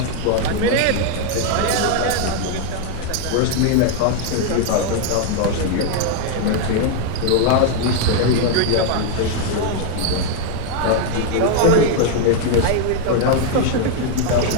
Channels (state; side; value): different; both; correlation 0.00